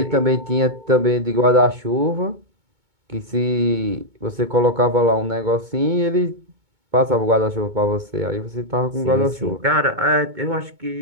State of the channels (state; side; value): late; left; 2.2 ms